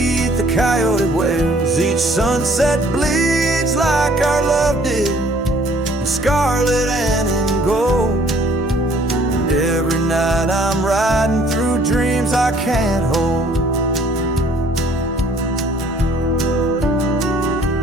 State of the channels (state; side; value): normal; both; correlation 0.58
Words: the coyote wails. Each sunset bleeds like our love did, in scarlet and in gold. And every night I'm riding through dreams I can't hold.